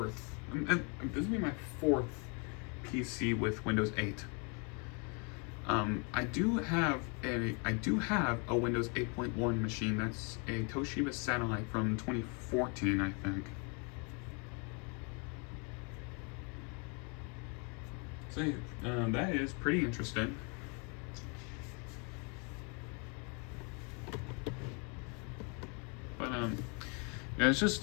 fourth PC with Windows 8. I do have a Windows 8.1 machine. That's a Toshiba Satellite from 2014, I think. So that is pretty interesting. But yeah, it's just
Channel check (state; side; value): quieter; right; 35.0 dB